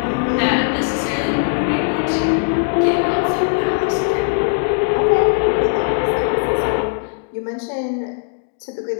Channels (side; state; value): right; silent; digital silence